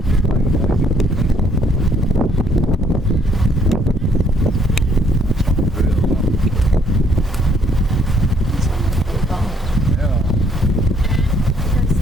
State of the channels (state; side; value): normal; both; correlation 0.66